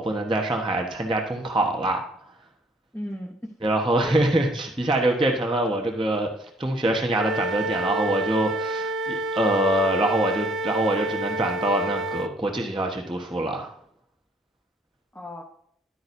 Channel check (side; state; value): both; normal; correlation 0.60